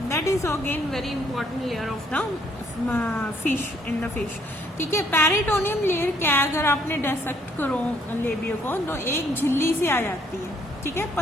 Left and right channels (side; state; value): both; normal; correlation 0.66